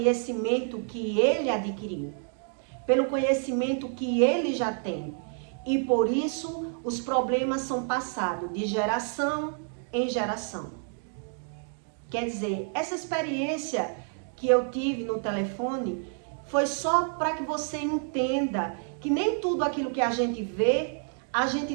que ele adquiriu, pelo conhecimento que ele já tem. E por isso os problemas são passados de geração em geração. Quer dizer, essa experiência que eu tive no telefone foi só para que você entenda que nem tudo aquilo que a gente vê, a gente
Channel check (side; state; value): left; silent; 55 dB below the other